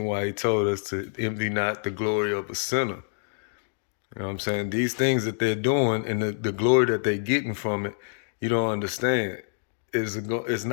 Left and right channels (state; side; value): silent; right; digital silence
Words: why he told us to envy not the glory of a sinner. You know what I'm saying? These things that they're doing and the glory that they're getting from it, you don't understand. It's